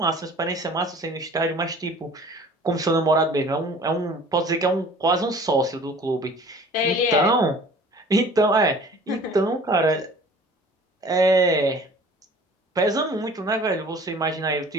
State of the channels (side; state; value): both; normal; correlation 0.47